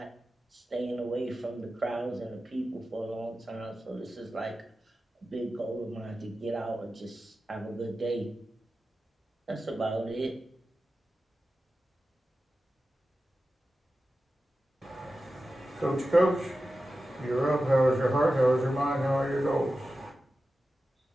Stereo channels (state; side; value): normal; both; correlation 0.93